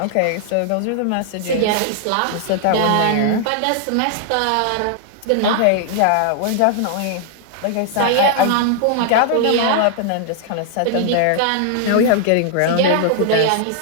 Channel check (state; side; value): different; both; correlation -0.01